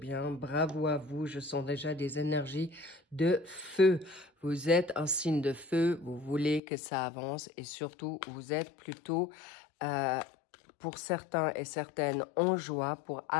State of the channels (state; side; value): drops out; right; at 6.6 s